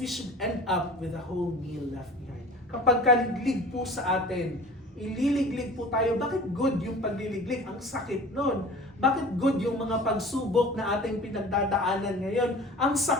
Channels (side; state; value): both; normal; correlation 0.41